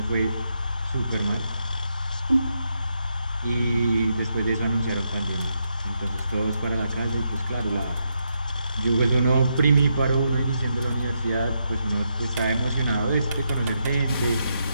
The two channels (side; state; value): both; inverted; correlation -0.81